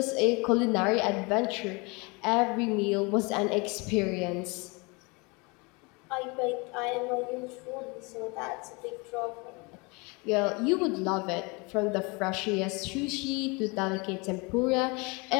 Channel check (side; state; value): right; quieter; 28.3 dB